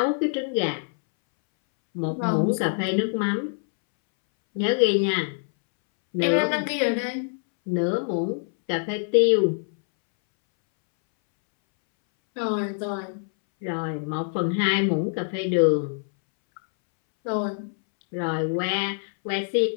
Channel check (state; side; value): silent; right; 62 dB below the other